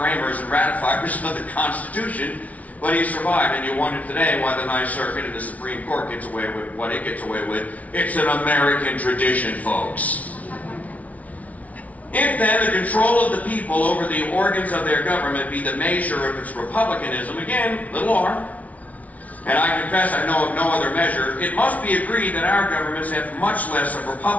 and ratifiers of the Constitution, but he survived. And you wonder today why the Ninth Circuit and the Supreme Court gets away with what it gets away with. It's an American tradition, folks. If then the control of the people over the organs of their government be the measure of its republicanism, again, little r, and I confess I know of no other measure, it must be agreed that our governments have much less of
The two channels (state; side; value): late; right; 0.070 ms